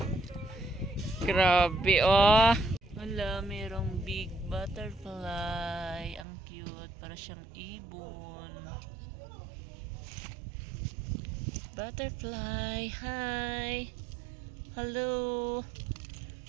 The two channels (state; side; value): drops out; left; at 6.2 s